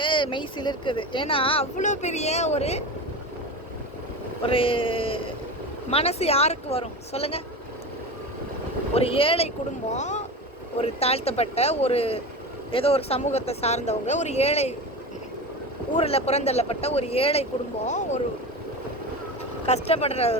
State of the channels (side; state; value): both; normal; correlation 0.27